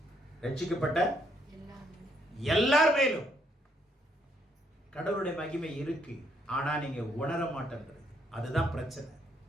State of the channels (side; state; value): both; normal; correlation 0.72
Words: ரட்சிக்கப்பட்ட எல்லார் மேலும் கடவுளுடைய மகிமை இருக்கு. ஆனா நீங்க உணர மாட்டேன்றது, அதுதான் பிரச்சனை.